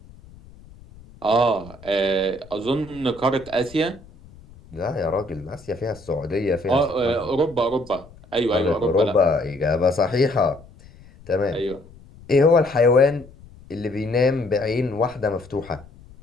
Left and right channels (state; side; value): noise; left; rumble, 22 dB below the sound